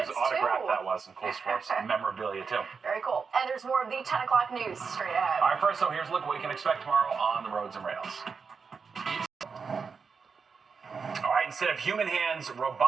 autograph too. that was, some cool sports memorabilia too. Very cool. And there's more of the 10 o'clock news straight ahead. All right, first, so here's a look at what you can expect tomorrow on the roads and rails. All right, instead of human hands,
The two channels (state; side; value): quieter; left; 5.4 dB